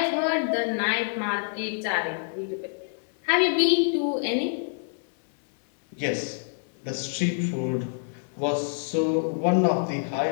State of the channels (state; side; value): silent; right; 61 dB below the other